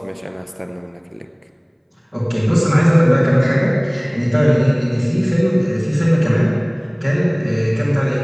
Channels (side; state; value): both; identical; correlation 1.00